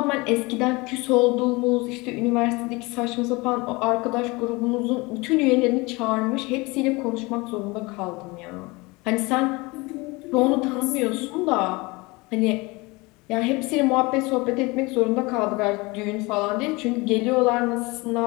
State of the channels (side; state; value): right; quieter; 24.5 dB